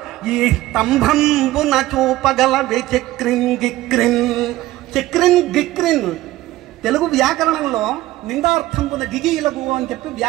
ఈ స్తంభంబున చూపగలవే చక్రిన్ గిక్రిన్. చక్రిన్ గిక్రిన్ తెలుగు వ్యాకరణంలో నిందార్థంబున గిగిలగు అని చెప్పి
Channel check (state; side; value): quieter; left; 16.4 dB